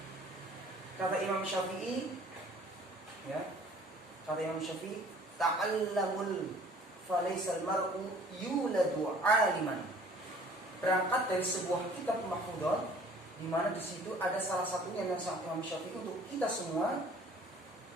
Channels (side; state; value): both; normal; correlation 0.53